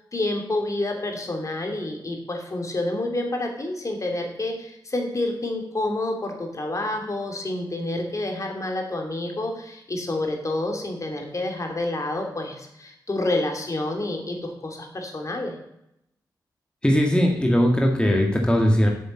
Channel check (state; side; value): normal; both; correlation 0.86